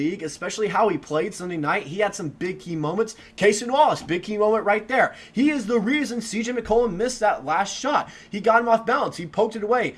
especially how he played Sunday night. He had some big key moments. Cason Wallace, big key moment right there. He is the reason CJ McCollum missed that last shot. He got him off balance. He poked it away,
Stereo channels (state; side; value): identical; both; correlation 1.00